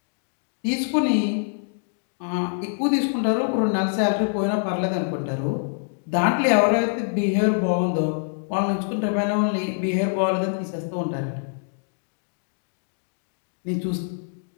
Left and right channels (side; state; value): right; silent; digital silence